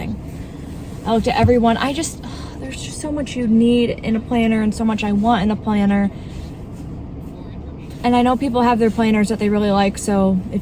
I looked at everyone. There's just so much you need in a planner and so much I want in a planner. And I know people have their planners that they really like, so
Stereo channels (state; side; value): identical; both; correlation 1.00